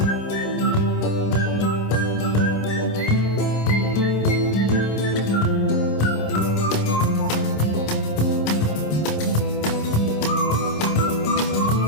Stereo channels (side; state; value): right; late; 26 ms